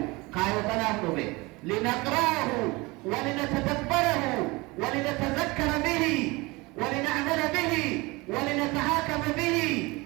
kaayoo kanaaf dhufe linaqra'ahu walinatadabbarahu walinatazakkara bihi walina'mala bihi walinatahakama bihi.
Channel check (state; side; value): quieter; left; 23.8 dB